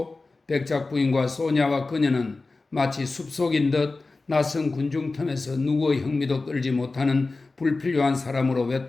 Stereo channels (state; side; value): quieter; right; 3.6 dB